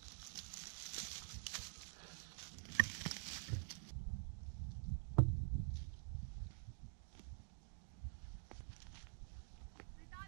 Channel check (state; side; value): silent; left; digital silence